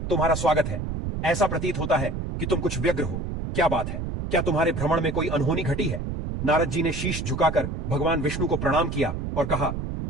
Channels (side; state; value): right; noise; rumble, 4 dB below the sound